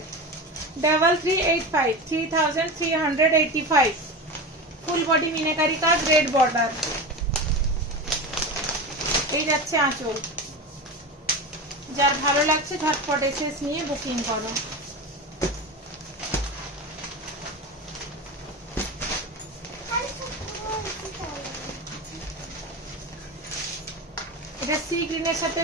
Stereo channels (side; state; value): both; normal; correlation 0.25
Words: 3385 3385। ফুল বডি মিনাকারি কাজ, রেড বর্ডার। এই যাচ্ছে আঁচল। যার ভালো লাগছে ঝটপট এসএস নিয়ে বুকিং করো। এটা সি গ্রিনের সাথে